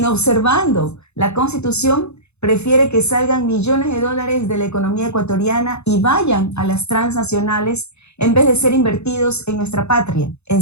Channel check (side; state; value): right; late; 0.81 ms